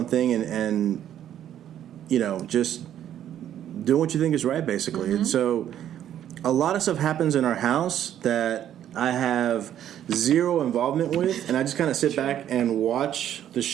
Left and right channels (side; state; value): left; quieter; 10.8 dB